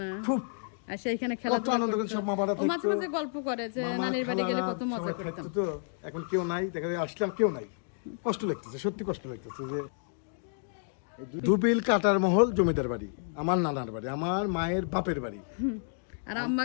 না খুব। আর সেইখানে খেলাধুলা আনন্দ করে সব মামারা থাকতো, মাঝে মাঝে গল্প করে যে নানির বাড়ি গেলে কত মজা করতাম। তো এখন কেউ নাই, দেখা যায় আসলাম কেউ নাই, কষ্ট লাগতেছে, সত্যি কষ্ট লাগতেছে। যে ধুপিল কাটার মহল জমিদার বাড়ি আমার নানার বাড়ি, আমার মায়ের বাপের বাড়ি। আর আম্মা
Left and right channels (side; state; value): right; silent; digital silence